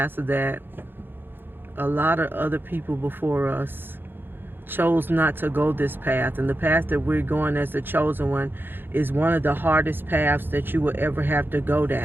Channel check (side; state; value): left; late; 0.099 ms